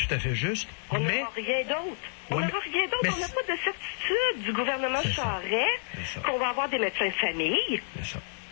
à fait juste. On n'aura rien d'autre. On n'a rien d'autre. On n'a pas de certitude du gouvernement Charest qu'on va avoir des médecins de famille. C'est ça.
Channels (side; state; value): right; silent; 58 dB below the other